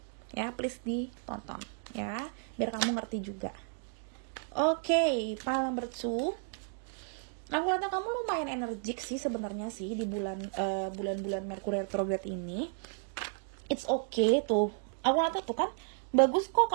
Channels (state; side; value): silent; left; 56 dB below the other